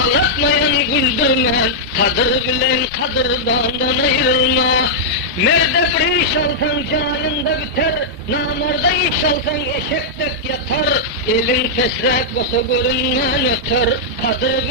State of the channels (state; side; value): normal; both; correlation -0.08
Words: güldürme, kadır bilen kadırdandan ayrılma. Merde bir iş alsan canında biter, namarda iş alsan eşektek yatar. Elin fesrek basa görünmen öter, kadır